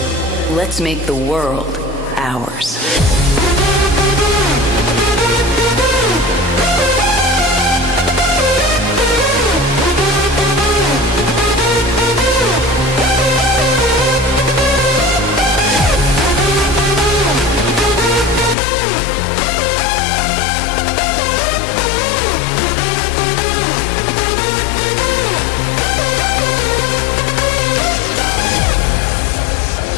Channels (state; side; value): drops out; right; at 18.6 s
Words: Let's make the world ours.